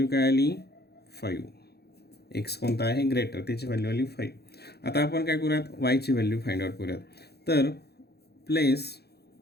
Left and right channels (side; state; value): right; late; 0.47 ms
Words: काय आली? 5. x कोणता आहे? ग्रेटर, त्याची व्हॅल्यू आली 5. आता आपण काय करूयात? वायची व्हॅल्यू फाइंड आउट करूयात. तर place